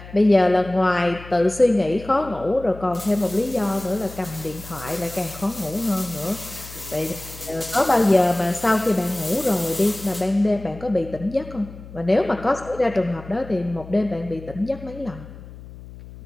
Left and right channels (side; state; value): left; noise; hum, 16 dB below the sound